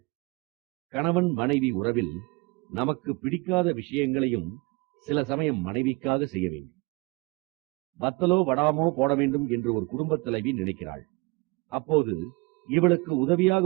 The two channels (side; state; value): left; quieter; 25.6 dB